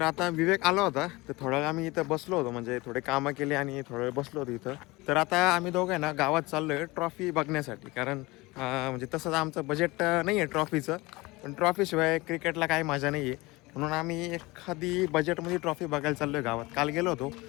आता विवेक आला होता, तर थोडा वेळ आम्ही इथं बसलो होतो, म्हणजे थोडे कामं केले आणि थोडा वेळ बसलो होतो इथं. तर आता आम्ही दोघं ना गावात चाललोय ट्रॉफी बघण्यासाठी, कारण म्हणजे तसंच आमचं बजेट नाही आहे ट्रॉफीचं, पण ट्रॉफीशिवाय क्रिकेटला काही मजा नाही आहे. म्हणून आम्ही एखादी बजेटमध्ये ट्रॉफी बघायला चाललोय गावात. काल गेलो होतो,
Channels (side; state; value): right; quieter; 22.4 dB